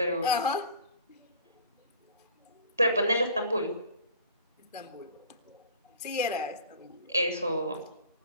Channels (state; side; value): inverted; both; correlation -0.45